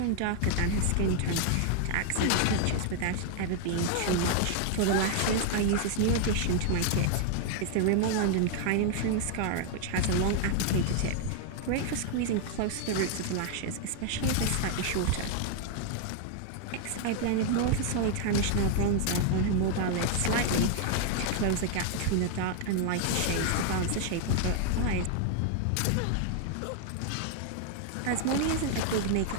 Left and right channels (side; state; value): both; different; correlation 0.00